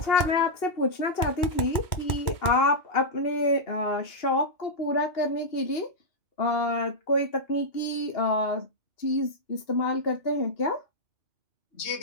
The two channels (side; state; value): right; late; 2.8 ms